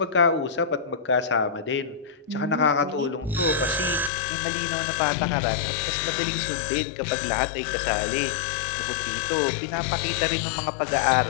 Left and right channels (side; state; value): right; drops out; at 4.1 s